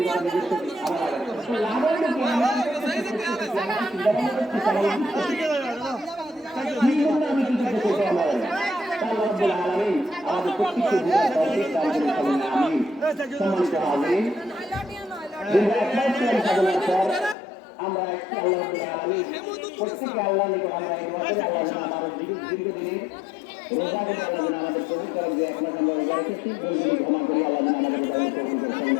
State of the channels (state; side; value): drops out; right; at 17.4 s